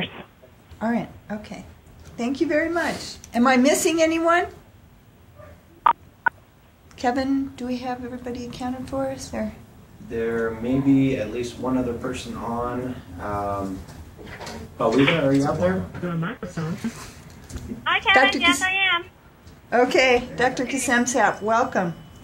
All right. Okay. Thank you very much. Am I missing anyone? Kevin, do we have everybody accounted for us? Or? There may be at least one other person on. Paulina, are you out there? Hi, Kevin. Yes, I am. Okay, Dr. Kasemsap, welcome.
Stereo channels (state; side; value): identical; both; correlation 1.00